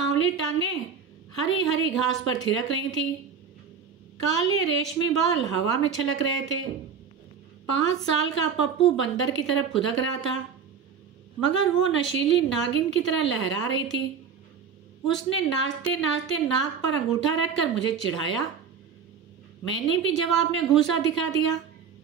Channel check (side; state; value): left; quieter; 6.6 dB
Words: टांगें हरी हरी घास पर थिरक रही थी। काले रेशमी बाल हवा में छलक रहे थे। 5 साल का पप्पू बंदर की तरफ फुदक रहा था, मगर वो नशीली नागिन की तरह लहरा रही थी। उसने नाचते नाचते नाक पर अंगूठा रखकर मुझे चिढ़ाया। मैंने भी जवाब में घूंसा दिखा दिया,